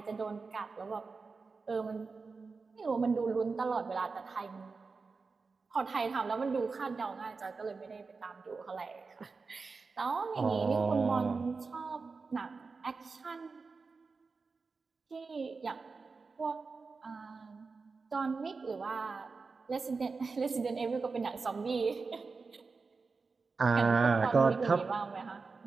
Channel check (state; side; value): quieter; left; 4.4 dB